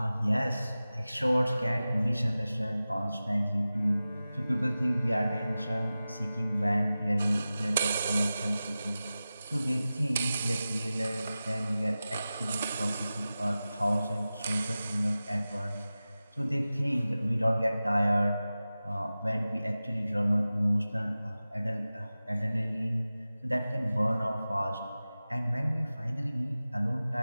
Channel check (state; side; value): inverted; both; correlation -0.95